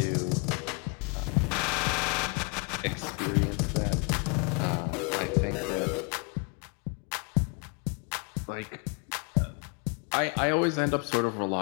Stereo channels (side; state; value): right; quieter; 33.9 dB